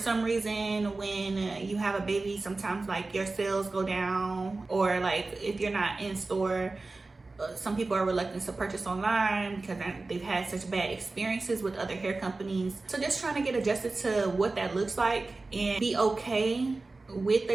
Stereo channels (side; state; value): left; quieter; 3.4 dB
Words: reason when you have a baby, sometimes your sales go down, or if you're not in store, some people are reluctant to purchase online because they've had such bad experiences with other hair companies. So just trying to get adjusted to what that looks like and be okay with